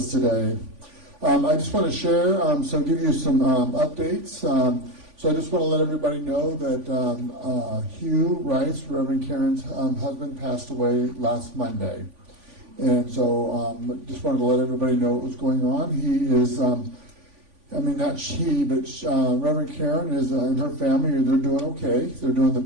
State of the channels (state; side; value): late; left; 3.5 ms